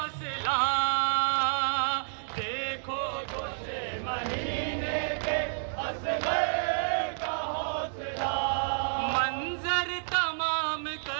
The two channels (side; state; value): left; silent; digital silence